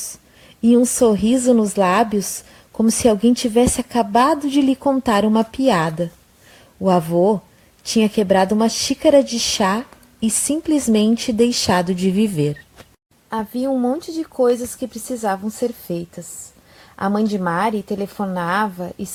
e um sorriso nos lábios, como se alguém tivesse acabado de lhe contar uma piada. O avô tinha quebrado uma xícara de chá e simplesmente deixado de viver. Havia um monte de coisas que precisavam ser feitas. A mãe de Mari telefonava,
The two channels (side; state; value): both; identical; correlation 1.00